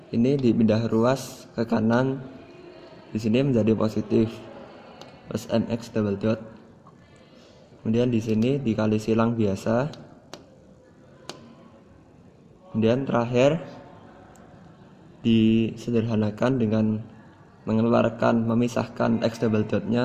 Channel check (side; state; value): both; identical; correlation 1.00